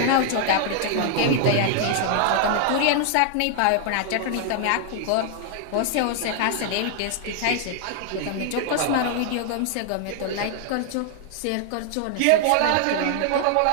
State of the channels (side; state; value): both; different; correlation 0.00